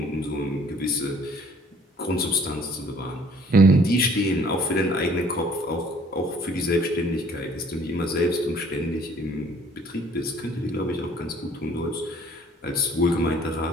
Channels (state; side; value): normal; both; correlation 0.57